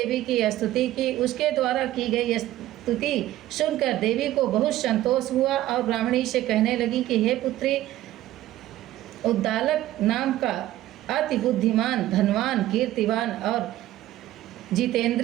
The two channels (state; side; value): quieter; left; 14.5 dB